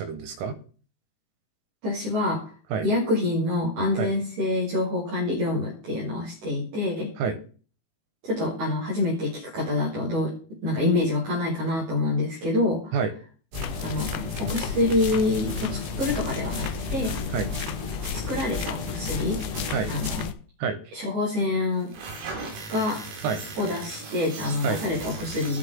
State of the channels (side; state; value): left; late; 19 ms